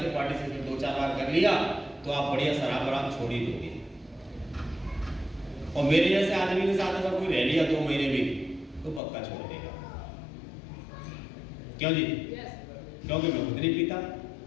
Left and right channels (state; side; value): drops out; right; at 9.0 s